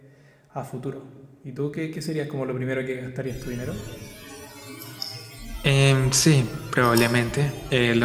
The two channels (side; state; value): both; identical; correlation 1.00